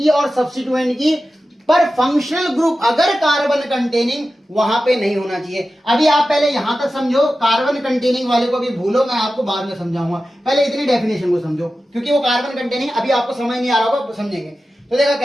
और सब्स्टिट्यूएंट की, पर फंक्शनल ग्रुप अगर कार्बन कंटेनिंग वहां पे नहीं होना चाहिए। अभी आप पहले यहां तक समझो, कार्बन कंटेनिंग वाले को भी भूलो, मैं आपको बाद में समझाऊंगा, पहले इतनी डेफिनेशन को समझो क्योंकि वो कार्बन कंटेनिंग अभी आपको समझ नहीं आ रहा होगा, समझेंगे। तो देखा कह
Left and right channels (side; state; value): both; normal; correlation 0.93